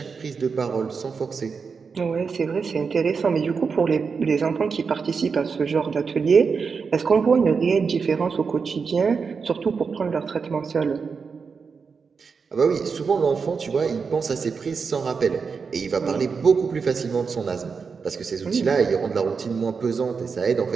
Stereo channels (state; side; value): quieter; left; 5.4 dB